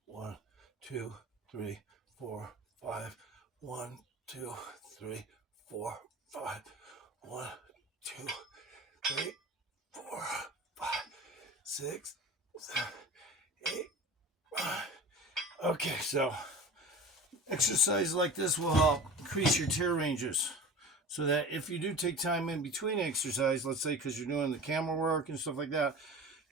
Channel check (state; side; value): normal; both; correlation 0.35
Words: 1, 2, 3, 4, 5. 1, 2, 3, 4, 5. 1, 2, 3, 4, 5, 6, 7, 8, 9. Okay, so exercise like this will help increase your tear ranges so that if you do take time in between exercise, let's say because you're doing the camera work and stuff like that,